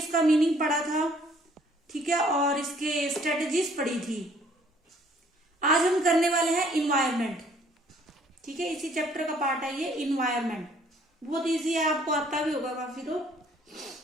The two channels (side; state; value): both; normal; correlation 0.60